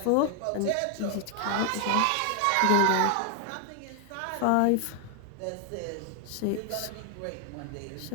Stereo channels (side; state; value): both; different; correlation 0.00